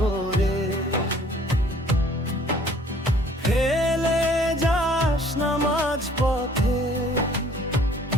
ফেলে যাস না মাঝ পথে।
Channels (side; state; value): both; normal; correlation 0.56